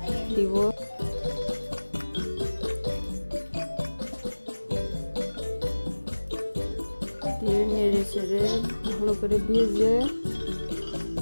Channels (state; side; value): inverted; both; correlation -1.00